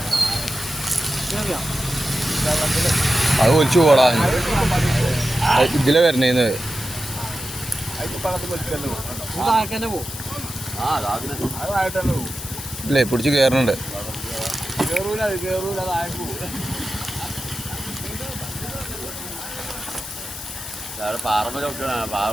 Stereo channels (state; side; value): noise; left; hiss, 10 dB below the sound